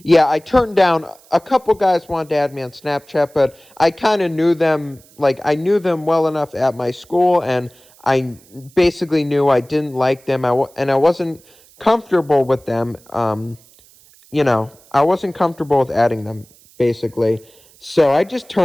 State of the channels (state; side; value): noise; right; hiss, 28 dB below the sound